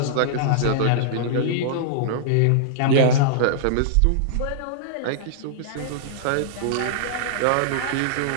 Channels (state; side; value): different; both; correlation -0.02